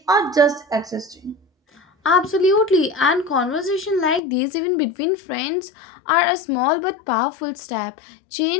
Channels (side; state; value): right; drops out; at 4.2 s